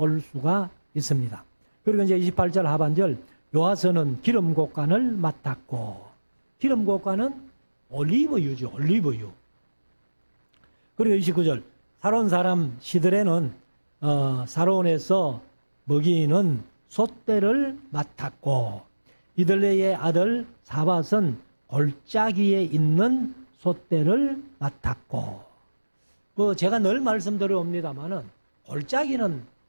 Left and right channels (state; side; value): inverted; both; correlation -1.00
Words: 수가 있습니다. 그리고 이제 28절 하반절. 요아스는 기름곡간을 맡았고, 기름곡간은 올리브유죠. 올리브유. 그리고 29절. 사론 사람 시드레는 사론에서 먹이는 솥대를 맡았고, 이들레의 아들 사밧은 골짜기에 있는 솥대를 맡았고. 제가 늘 말씀드려옵니다만은 골짜기는